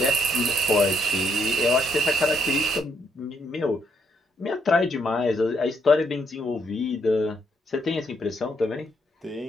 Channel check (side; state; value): both; normal; correlation 0.74